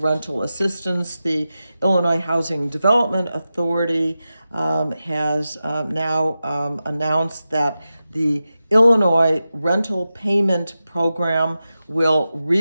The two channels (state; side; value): inverted; both; correlation -0.92